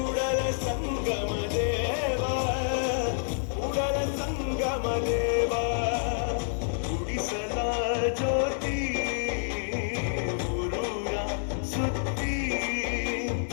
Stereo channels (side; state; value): right; silent; digital silence